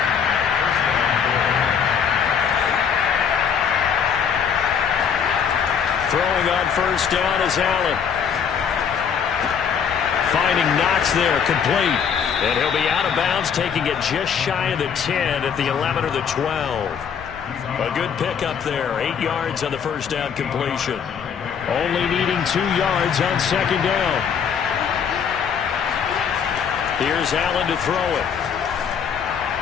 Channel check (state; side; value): quieter; right; 7.3 dB